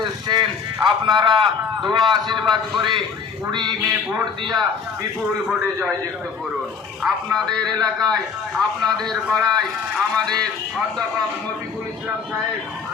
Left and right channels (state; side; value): quieter; right; 5.8 dB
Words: এসেছেন। আপনারা দোয়া আশীর্বাদ করে 20 মে ভোট দিয়া বিপুল ভোটে জয়যুক্ত করুন। আপনাদের এলাকায়, আপনাদের পাড়ায় আমাদের অধ্যাপক মফিকুল ইসলাম সাহেব